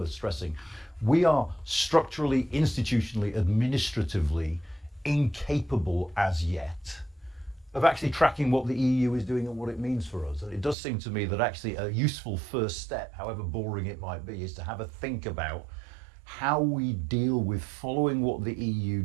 stressing. We are structurally, institutionally, administratively incapable as yet of actually tracking what the EU is doing and what it means for us. And it does seem to me that actually a useful first step, however boring it might be, is to have a think about how we deal with following what the EU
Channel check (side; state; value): left; drops out; at 10.8 s